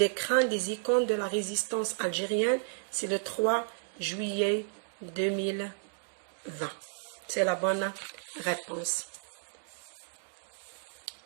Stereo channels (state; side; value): silent; left; digital silence